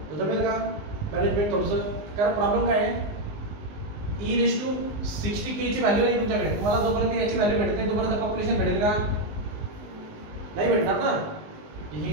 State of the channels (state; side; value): late; left; 19 ms